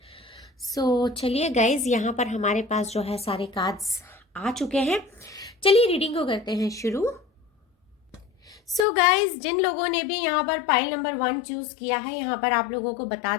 So चलिए गाइज, यहाँ पर हमारे पास जो है सारे कार्ड्स आ चुके हैं। चलिए रीडिंग को करते हैं शुरू। सो गाइज, जिन लोगों ने भी यहाँ पर पाइल नंबर 1 चूज किया है, यहाँ पर आप लोगों को बता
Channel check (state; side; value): drops out; right; at 8.8 s